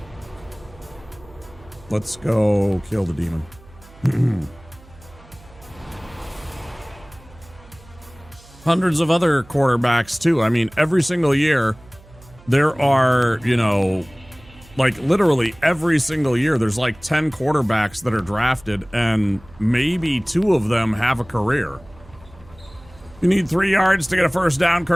Let's go kill the demon. Hundreds of other quarterbacks too. I mean, every single year there are, you know, like literally every single year there's like 10 quarterbacks that are drafted, and maybe 2 of them have a career. You need 3 yards to get a first down,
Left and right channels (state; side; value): noise; right; hum, 23 dB below the sound